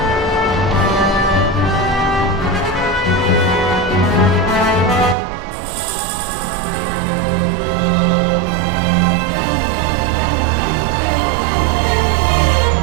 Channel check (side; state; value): left; drops out; at 5.2 s